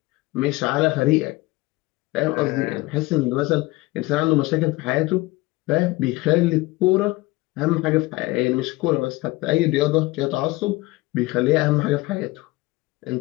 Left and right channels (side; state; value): right; quieter; 20.9 dB